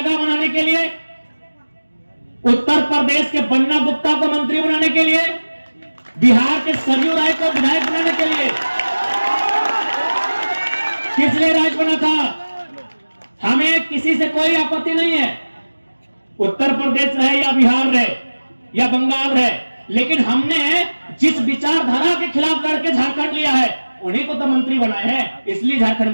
बनाने के लिए, उत्तर प्रदेश के बन्ना गुप्ता को मंत्री बनाने के लिए, बिहार के सरयू राय को विधायक बनाने के लिए। किस लिए राज बना था? हमें किसी से कोई आपत्ति नहीं है, उत्तर प्रदेश रहे या बिहार रहे या बंगाल रहे, लेकिन हमने जिस विचारधारा के खिलाफ लड़के झारखंड लिया है, उन्हीं को तो मंत्री बनाए हैं, इसलिए झारखंड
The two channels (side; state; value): both; inverted; correlation -1.00